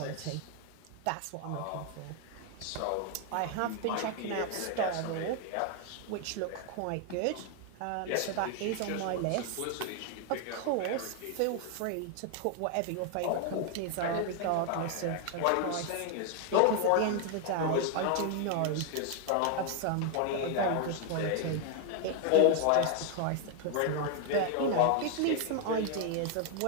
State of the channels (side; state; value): both; different; correlation 0.00